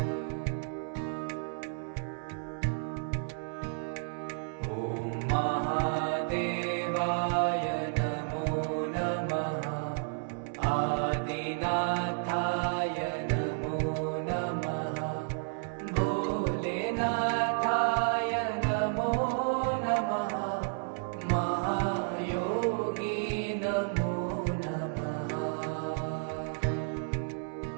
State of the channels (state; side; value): silent; left; digital silence